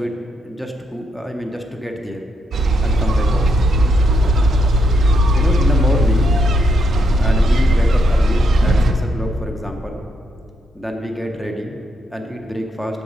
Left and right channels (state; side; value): normal; both; correlation 0.78